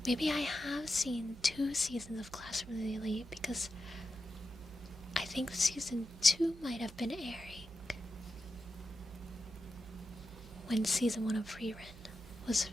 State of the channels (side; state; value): right; noise; hum, 16 dB below the sound